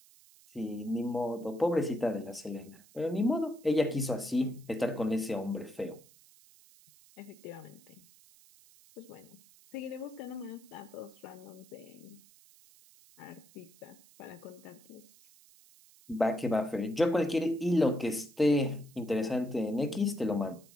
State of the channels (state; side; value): noise; right; hiss, 25 dB below the sound